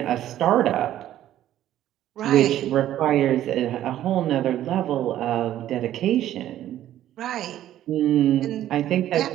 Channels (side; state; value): left; quieter; 12.5 dB